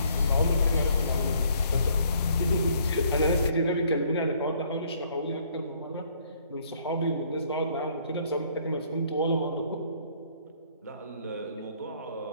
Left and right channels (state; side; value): inverted; both; correlation -0.64